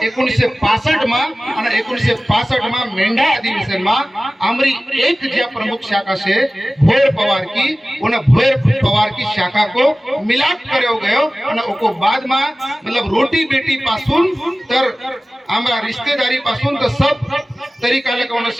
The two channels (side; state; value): both; normal; correlation 0.97